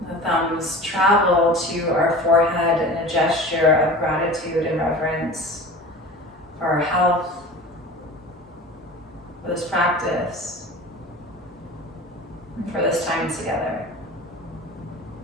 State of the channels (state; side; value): normal; both; correlation 0.37